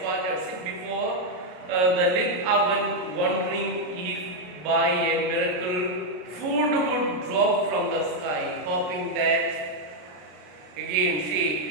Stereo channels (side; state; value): left; late; 33 ms